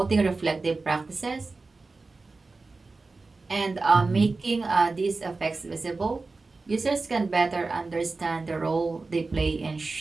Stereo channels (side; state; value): left; quieter; 3.7 dB